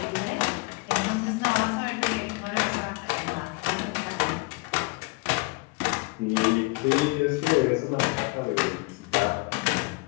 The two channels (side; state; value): right; quieter; 27.1 dB